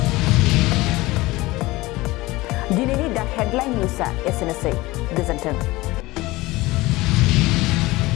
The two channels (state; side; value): quieter; right; 20.0 dB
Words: दिनैनि दा हेडलाइन निउजआ एसेनोसै। गोजोन्थों।